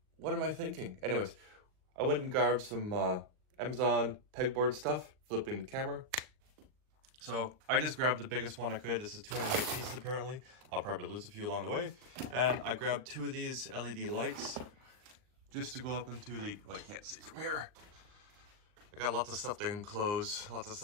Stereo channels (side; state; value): left; late; 39 ms